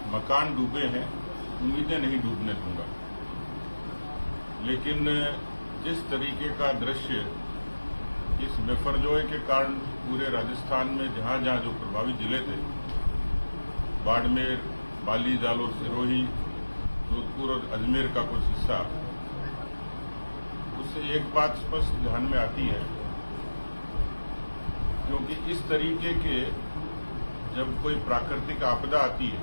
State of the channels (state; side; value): inverted; both; correlation -1.00